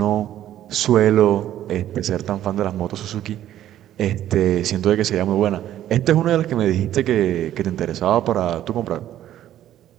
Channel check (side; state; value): left; quieter; 12.1 dB